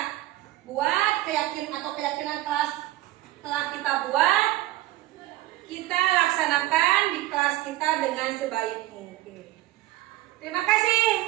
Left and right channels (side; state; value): left; quieter; 16.5 dB